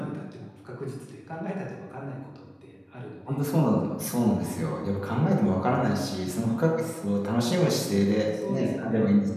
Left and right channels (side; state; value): both; identical; correlation 1.00